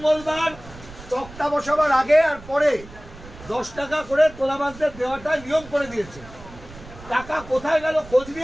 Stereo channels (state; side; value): noise; right; rumble, 18 dB below the sound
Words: তক্তা বসাবার আগে আর পরে 10 টাকা করে তোলাবাজদের দেওয়াটা নিয়ম করে দিয়েছে। টাকা কোথায় গেল খোঁজ